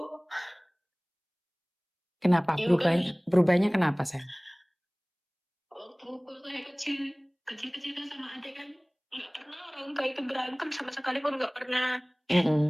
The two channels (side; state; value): both; identical; correlation 1.00